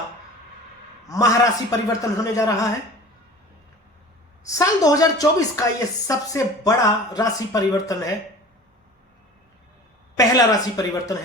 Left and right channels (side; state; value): both; normal; correlation 0.40